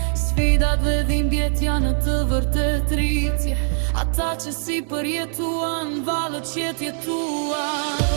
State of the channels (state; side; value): silent; left; 59 dB below the other